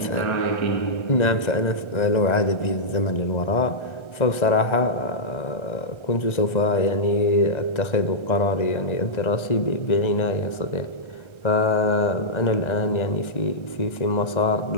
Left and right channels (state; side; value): late; right; 1.3 ms